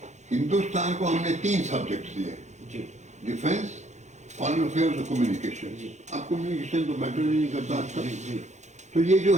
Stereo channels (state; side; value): late; left; 0.34 ms